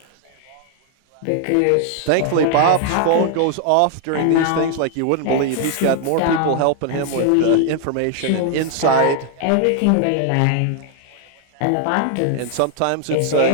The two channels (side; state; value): both; different; correlation 0.00